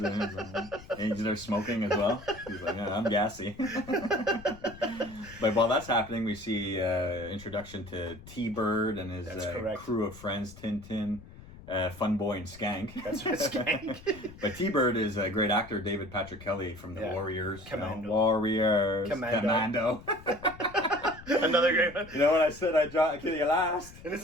of onions. And he's there smoking as well. He's like, I'm gassy. But while that's happening, we see introduction to T-Bird and his crew of friends, Tintin, Fun Boy, and Skank. That's right, Skank. But T-Bird is a great actor, David Patrick Kelly from The Warriors. Commando. Commando. Another great one. You know what I said? I dropped Kitty last. And this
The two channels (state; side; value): noise; left; rumble, 18 dB below the sound